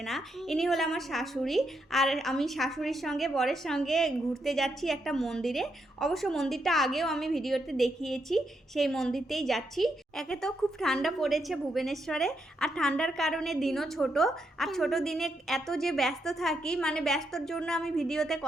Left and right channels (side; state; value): both; normal; correlation 0.80